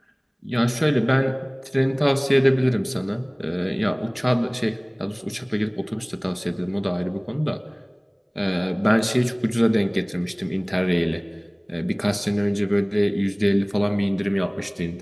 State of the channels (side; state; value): both; identical; correlation 1.00